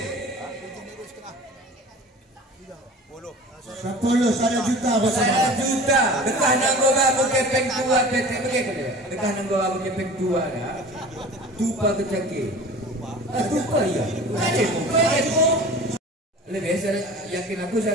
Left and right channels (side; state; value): both; normal; correlation 0.40